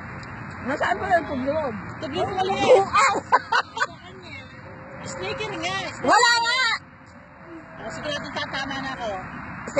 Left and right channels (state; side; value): identical; both; correlation 1.00